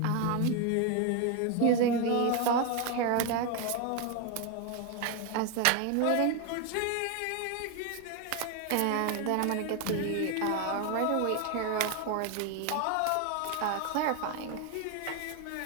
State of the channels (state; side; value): different; both; correlation 0.01